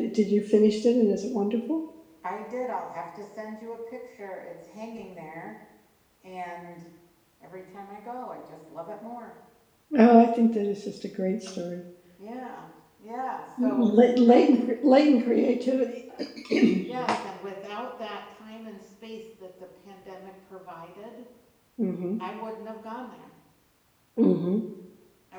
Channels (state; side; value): identical; both; correlation 1.00